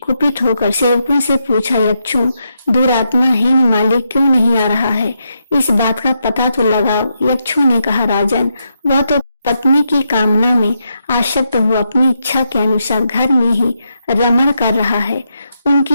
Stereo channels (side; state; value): both; inverted; correlation -0.82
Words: कुपित होकर सेवकों से पूछा, यक्षों, दुरात्मा हेममाली क्यों नहीं आ रहा है? इस बात का पता तो लगाओ। यक्षों ने कहा, राजन, वह तो पत्नी की कामना में आसक्त हुआ अपनी इच्छा के अनुसार घर में ही रमण कर रहा है।